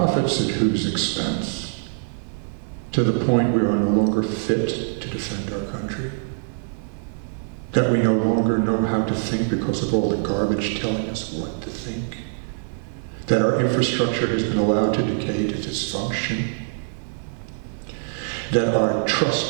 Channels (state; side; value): silent; left; 56 dB below the other